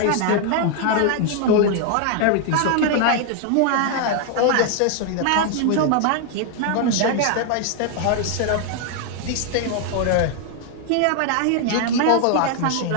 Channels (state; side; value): different; both; correlation 0.00